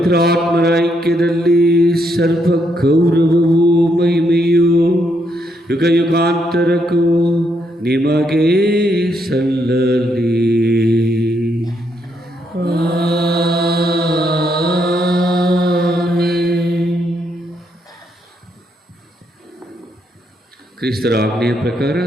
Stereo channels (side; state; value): both; normal; correlation 0.76